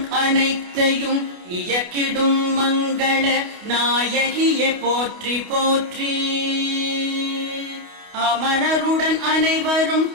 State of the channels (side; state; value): left; late; 28 ms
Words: அனைத்தையும் இயக்கிடும் மங்கள நாயகியை போற்றி போற்றி. அமரருடன் அனைவரும்